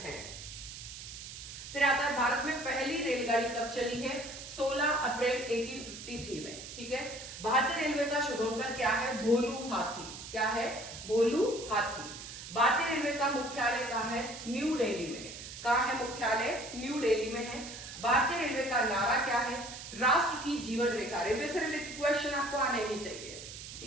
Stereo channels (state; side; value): noise; right; hiss, 11 dB below the sound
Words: हैं। फिर आता है भारत में पहली रेलगाड़ी कब चली है? 16 अप्रैल 1853 में। ठीक है, भारतीय रेलवे का शुभंकर क्या है? भोलू हाथी। क्या है? भोलू हाथी। भारतीय रेलवे का मुख्यालय कहाँ है? न्यू दिल्ली में। कहाँ है मुख्यालय? न्यू दिल्ली में है। भारतीय रेलवे का नारा क्या है? राष्ट्र की जीवन रेखा। रेलवे से रिलेटेड क्वेश्चन आपको आने ही चाहिए।